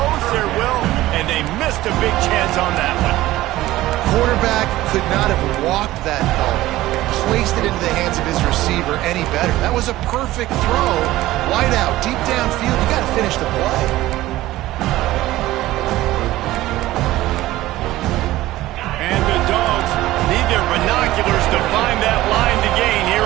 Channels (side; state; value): left; quieter; 16.3 dB